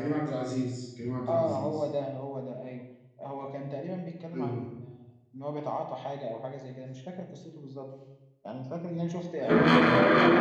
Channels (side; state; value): both; identical; correlation 1.00